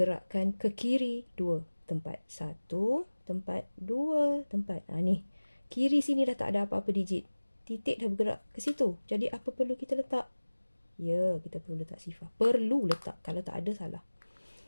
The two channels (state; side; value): inverted; both; correlation -1.00